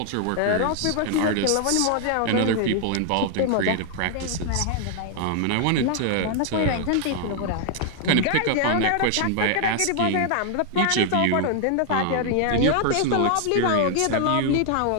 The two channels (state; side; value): different; both; correlation 0.00